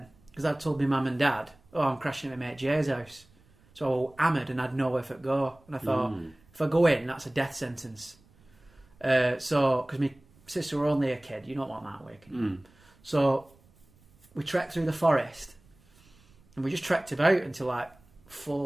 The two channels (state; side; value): noise; right; rumble, 30 dB below the sound